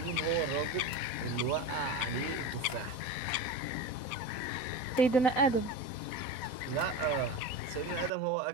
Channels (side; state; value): right; late; 4.1 ms